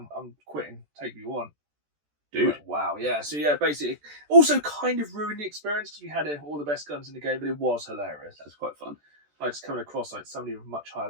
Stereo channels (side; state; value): left; late; 14 ms